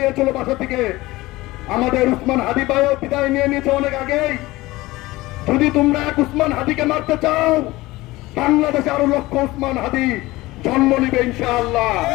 বাসা থেকে। আমাদের উসমান হাদি ভাইও বিদায় নিয়ে নিয়েছে অনেক আগেই। যদি তোমরা এক উসমান হাদিকে মারতে চাও, বাংলাদেশে আরো লক্ষ উসমান হাদি জন্ম নিবে ইনশাআল্লাহ।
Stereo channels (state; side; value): quieter; right; 19.5 dB